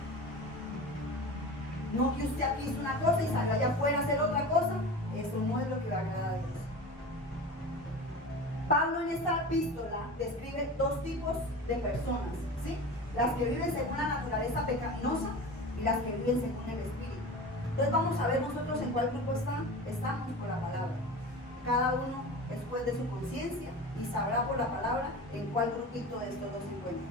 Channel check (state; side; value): normal; both; correlation 0.32